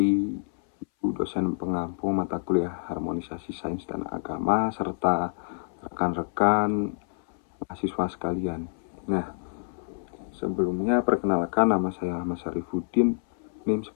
Ibu dosen pengampu mata kuliah Harmonisasi Sains dan Agama serta rekan-rekan mahasiswa sekalian. Nah, sebelumnya perkenalkan, nama saya Ahmad Syarifuddin, NIM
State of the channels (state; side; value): silent; right; 59 dB below the other